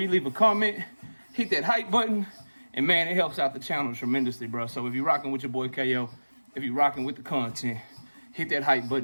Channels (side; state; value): both; inverted; correlation -1.00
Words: leave a comment, hit that hype button, and man, it helps out the channel tremendously, bro. So if you're rocking with your boy KO, if you're rocking with the content, hit that hype